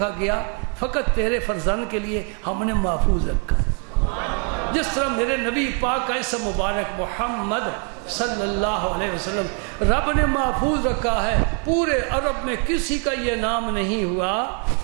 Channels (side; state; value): left; quieter; 39.8 dB